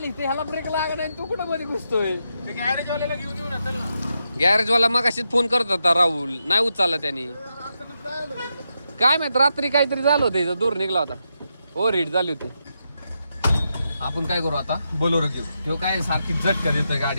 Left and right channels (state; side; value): inverted; both; correlation -0.85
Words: ते ह्याला ब्रेक लागला नाही, तू कुठं मध्ये घुसतोय. गॅरेजवाल्याला घेऊन येऊ ना. गॅरेजवाला मग अशीच फोन करत होता राहुल, नाही उचलला त्यांनी. काय माहित रात्री काहीतरी झालं होतं, इथं दूर निघला होता, ओव्हर हीट झाली होती. आपण काय करू आता, बोलेरो घेऊ. तो काय सारखी झटका देतोय